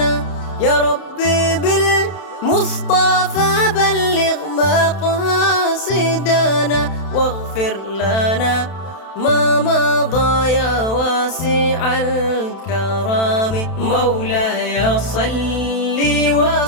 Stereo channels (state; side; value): late; right; 31 ms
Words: يا ربي بالمصطفى بلغ مقاصدنا واغفر لنا ما مضى يا واسع الكرام. مولاي صل